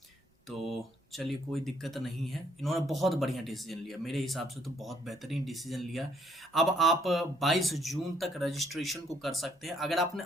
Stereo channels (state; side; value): normal; both; correlation 0.68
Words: तो चलिए, कोई दिक्कत नहीं है। इन्होंने बहुत बढ़िया डिसीजन लिया, मेरे हिसाब से तो बहुत बेहतरीन डिसीजन लिया। अब आप 22 जून तक रजिस्ट्रेशन को कर सकते हैं। अगर आपने